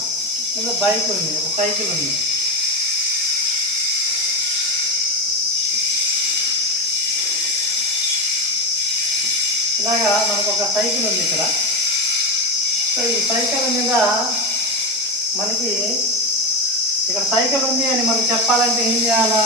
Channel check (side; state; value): both; normal; correlation 0.14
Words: లేదా బైక్ ఉంది, ఒక సైకిల్ ఉంది. ఇలాగా మనకు ఒక సైకిల్ ఉంది ఇక్కడ. సో ఈ సైకిల్ మీద మనకి ఇక్కడ సైకిల్ ఉంది అని మనం చెప్పాలంటే ఏం చేయాలా?